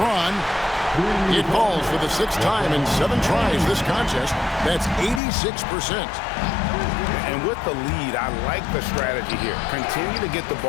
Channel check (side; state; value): right; drops out; at 5.2 s